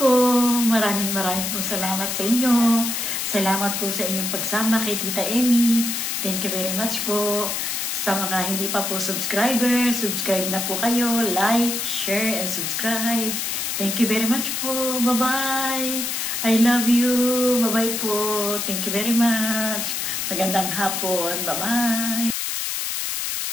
maraming po salamat sa inyo. Salamat po sa inyong pagsama kay Tita Emmy. Thank you very much po. Sa mga hindi pa po subscriber, subscribe na po kayo. Like, share, and subscribe. Thank you very much po. Bye-bye. I love you. Bye-bye po. Thank you very much. Magandang hapon. Bye-bye.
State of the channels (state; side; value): noise; left; hiss, 2 dB below the sound